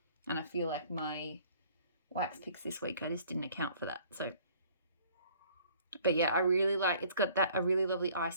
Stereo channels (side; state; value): both; inverted; correlation -0.55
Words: And I feel like my wax picks this week, I just didn't account for that. So, but yeah, I really like, it's got a really lovely